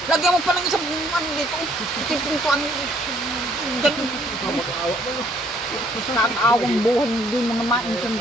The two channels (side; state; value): both; normal; correlation 0.64